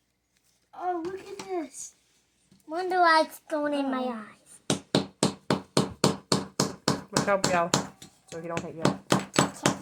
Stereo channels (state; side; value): identical; both; correlation 1.00